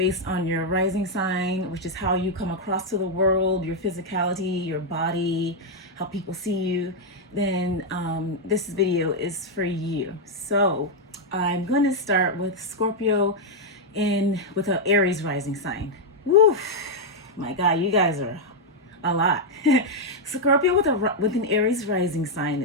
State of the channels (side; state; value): both; normal; correlation -0.01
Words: on your rising sign, which is how you come across to the world, your physicality, your body, how people see you, then this video is for you. So I'm going to start with Scorpio with an Aries rising sign. Woo, my God, you guys are a lot. Scorpio with an Aries rising sign